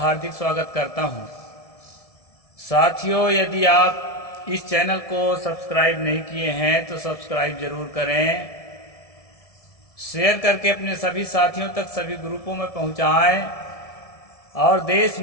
स्वागत करता हूं। साथियों, यदि आप इस चैनल को सब्सक्राइब नहीं किए हैं तो सब्सक्राइब जरूर करें, शेयर करके अपने सभी साथियों तक सभी ग्रुपों में पहुंचाएं और देश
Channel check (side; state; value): right; late; 1.7 ms